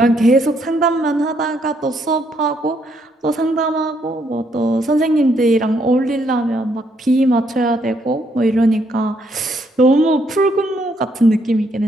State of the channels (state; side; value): normal; both; correlation 0.72